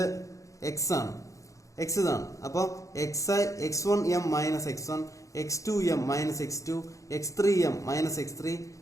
x ആണ്. എക്സ് ഇതാണ്. അപ്പോൾ x1m minus x1, x2m minus x2, x3m minus x3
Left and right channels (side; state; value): right; late; 0.16 ms